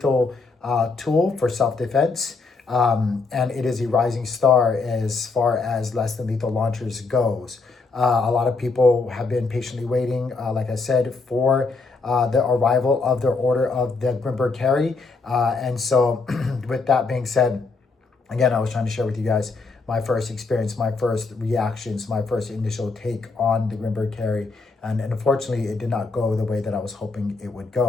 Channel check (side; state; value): right; quieter; 4.1 dB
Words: tool for self-defense, and it is a rising star as far as less than lethal launchers goes. A lot of people have been patiently waiting, like I said, for the arrival of their order of the Grimberg carry. And so with that being said, again, I was trying to share with you guys my first experience, my first reactions, my first initial take on the Grimberg carry. And unfortunately, it did not go the way that I was hoping it would